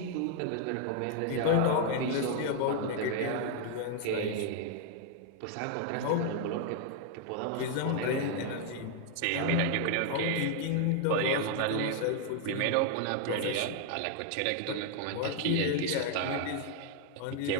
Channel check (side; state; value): both; different; correlation 0.00